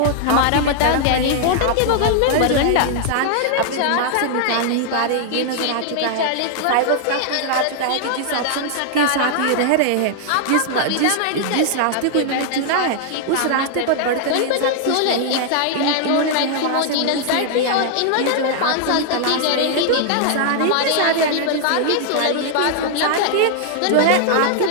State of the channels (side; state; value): both; different; correlation 0.00